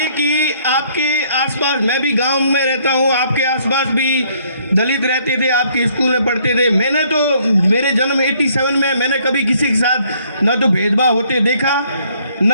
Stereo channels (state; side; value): inverted; both; correlation -0.64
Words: कि आपके आसपास, मैं भी गांव में रहता हूं, आपके आसपास भी दलित रहते थे, आपके स्कूल में पढ़ते थे। मैंने तो मेरे जन्म 87 में मैंने कभी किसी के साथ न तो भेदभाव होते देखा,